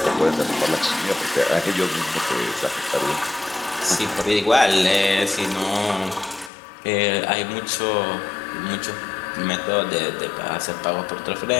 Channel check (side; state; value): right; drops out; at 6.5 s